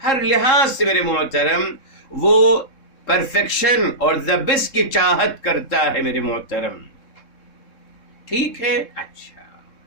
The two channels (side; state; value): right; late; 3.7 ms